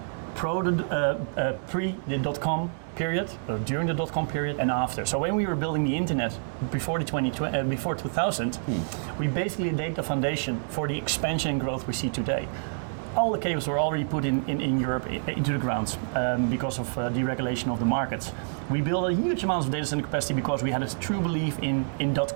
pre the .com period, during the .com period, and after. So when we were building the internet before 2000, we basically laid the foundation for the expansion and growth we see today. All the cables were already put in Europe into the ground because of deregulation of the markets. We built a huge amount of data center capacity because we had a true belief in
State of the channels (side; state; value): left; silent; digital silence